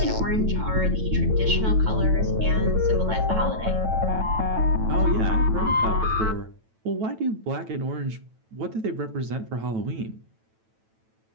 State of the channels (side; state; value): left; late; 9.1 ms